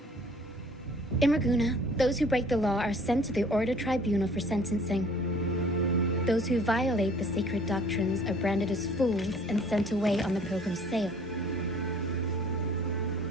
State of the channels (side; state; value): both; normal; correlation 0.53